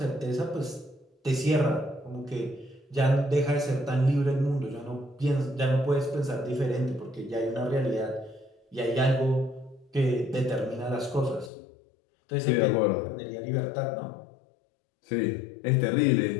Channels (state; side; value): drops out; right; at 11.5 s